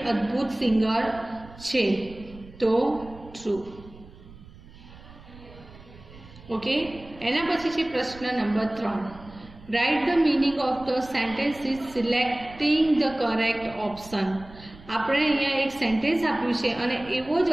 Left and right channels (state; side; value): noise; right; rumble, 20 dB below the sound